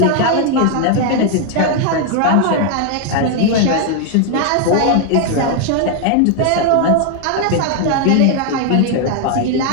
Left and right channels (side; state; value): both; different; correlation 0.00